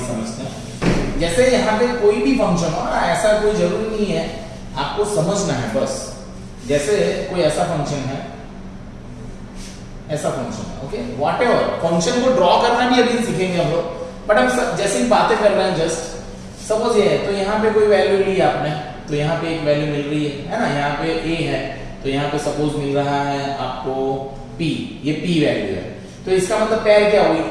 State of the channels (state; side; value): identical; both; correlation 1.00